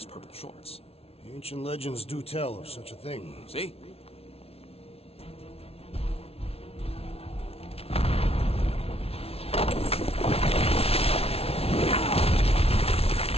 purple shorts. The ancient legends do tell of such a thing. See?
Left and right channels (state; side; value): late; right; 0.29 ms